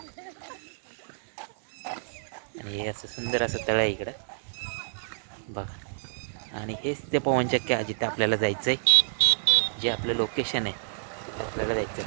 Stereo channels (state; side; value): silent; left; 59 dB below the other